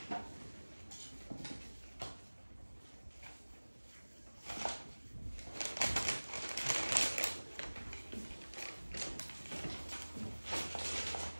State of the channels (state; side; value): inverted; both; correlation -1.00